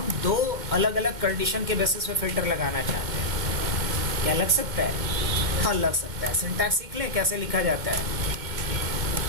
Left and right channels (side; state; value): left; late; 2.1 ms